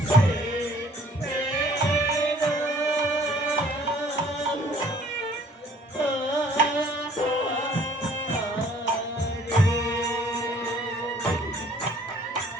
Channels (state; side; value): normal; both; correlation 0.56